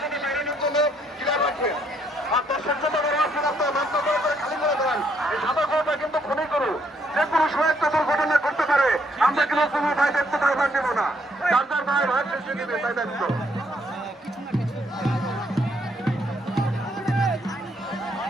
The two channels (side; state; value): both; normal; correlation 0.70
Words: সাথে বেরোনোর জন্য ক্লিয়ার রাখবেন। আর দর্শক জন্য বড় আছেন আপনার মাত্র করে খালি করে দেন। এই সাদা গরুটা কিন্তু খুবই করু, যে কোনো সময় একটা দুর্ঘটনা করতে পারে। আমরা কিন্তু কোনো ভাই দেখতে পারবার নেব না, যার যার ভাই ভাই শেষে নেবে তাই দায়িত্ব।